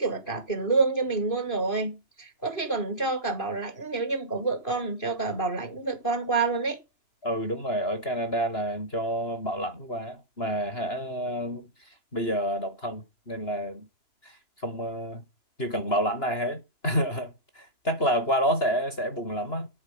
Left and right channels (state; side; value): late; right; 2.9 ms